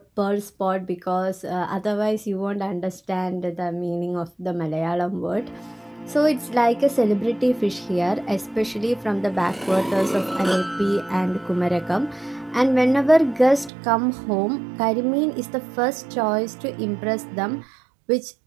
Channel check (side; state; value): left; drops out; at 13.7 s